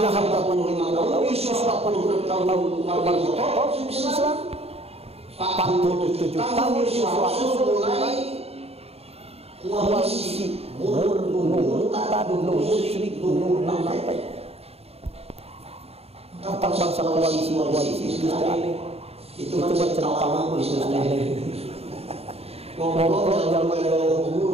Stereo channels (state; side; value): late; left; 0.29 ms